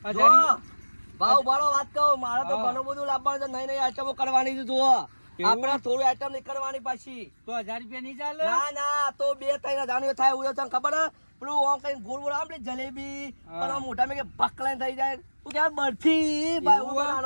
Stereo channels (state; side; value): inverted; both; correlation -1.00